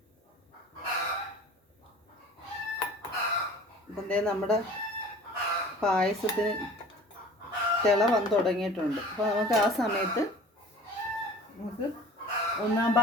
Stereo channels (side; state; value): both; normal; correlation 0.44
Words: ഇപ്പം നമ്മുടെ പായസത്തിന് തിള വന്ന് തുടങ്ങിയിട്ടുണ്ട്. അപ്പോൾ നമുക്ക് ആ സമയത്ത് ഒന്നാം